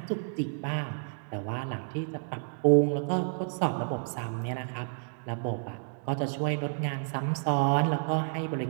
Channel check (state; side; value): silent; left; digital silence